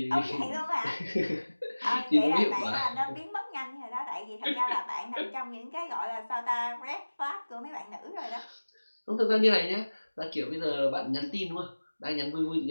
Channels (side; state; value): both; inverted; correlation -1.00